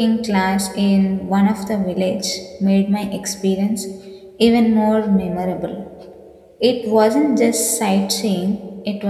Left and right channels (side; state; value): both; identical; correlation 1.00